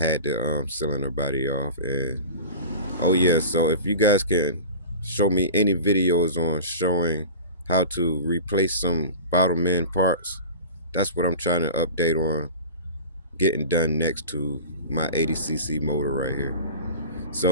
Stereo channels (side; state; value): both; inverted; correlation -0.35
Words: the cylinder body off. And oh yeah, so if you guys can show me any videos on showing how to replace some bottom end parts, that's what I'm trying to update on getting done next to my 80cc motor right here.